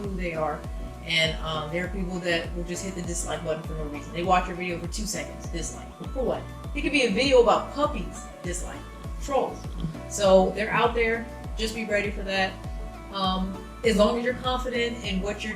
they are. And there are people that will just hit the dislike button for no reason. They watch your video for 2 seconds, dislike. For what? It could be a video about puppies, dislike. Trolls. So they're out there. Just be ready for that. As long as you're confident in what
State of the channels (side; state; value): both; identical; correlation 1.00